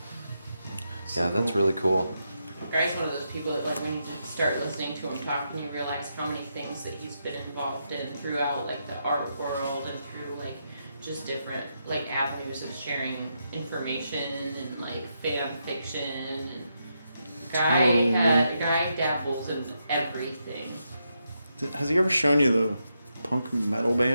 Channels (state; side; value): inverted; both; correlation -0.83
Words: Yeah, that's really cool. Guy's one of those people that like when you start listening to him talk and you realize how many things that he's been involved in throughout like the art world and through like just different like avenues of sharing information and like fan fiction and Guy dabbles in everything. Has he ever shown you the punk metal